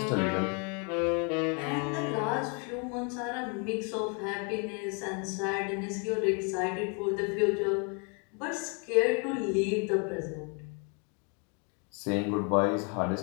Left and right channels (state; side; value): quieter; right; 35.9 dB